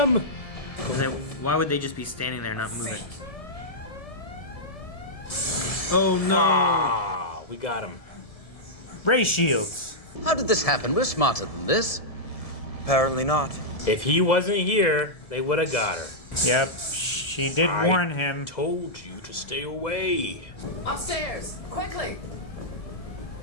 Why would they just be standing there not moving? Oh no. Ah, we got him. Ray shields. How did this happen? We're smarter than this. Apparently not. If he wasn't here, they would have got her. Yep. She did warn him. Told you to stay away. Upstairs, quickly.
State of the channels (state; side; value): late; right; 1.7 ms